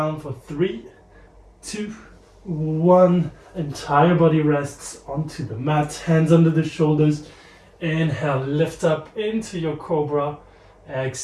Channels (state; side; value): identical; both; correlation 1.00